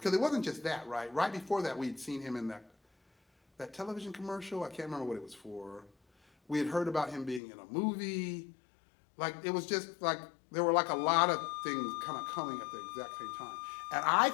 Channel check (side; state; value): right; drops out; at 7.4 s